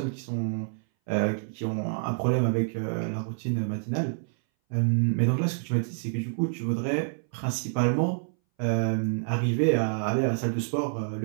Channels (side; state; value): left; silent; 59 dB below the other